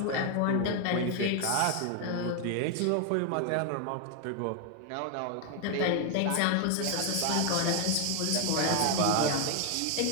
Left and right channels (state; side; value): different; both; correlation 0.00